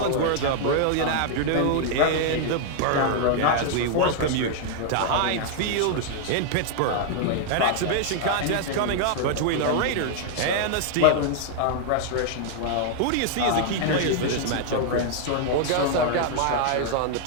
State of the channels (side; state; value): both; different; correlation 0.00